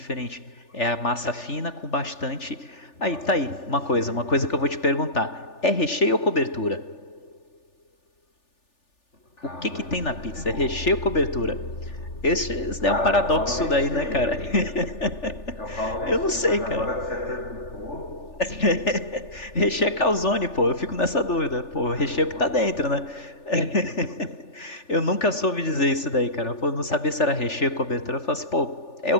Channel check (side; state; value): right; late; 3.4 ms